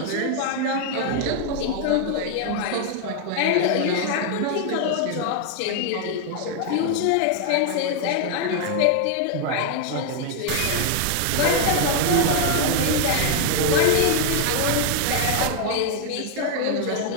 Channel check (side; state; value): both; different; correlation 0.00